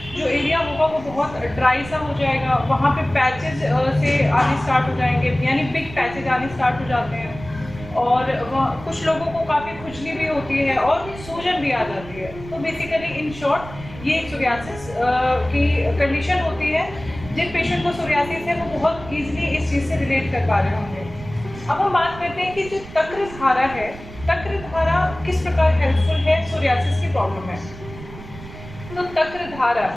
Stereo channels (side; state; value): right; noise; rumble, 15 dB below the sound